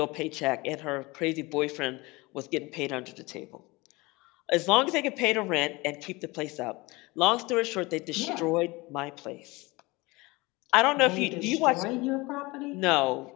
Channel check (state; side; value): quieter; right; 23.3 dB